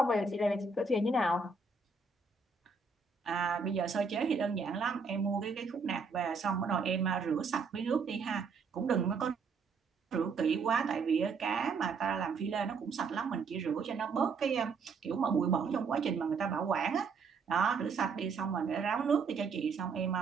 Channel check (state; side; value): quieter; left; 4.7 dB